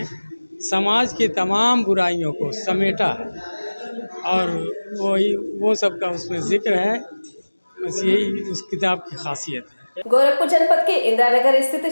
समाज की तमाम बुराइयों को समेटा है और वो सब का उसमें जिक्र है। बस यही उस किताब की खासियत है। गोरखपुर जनपद के इंदिरानगर स्थित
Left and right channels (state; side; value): inverted; both; correlation -1.00